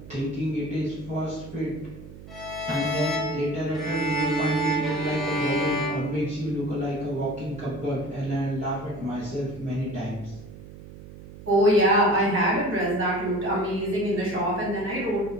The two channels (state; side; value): noise; right; hum, 16 dB below the sound